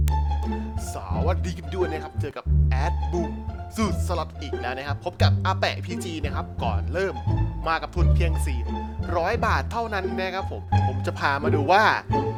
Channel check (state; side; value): identical; both; correlation 1.00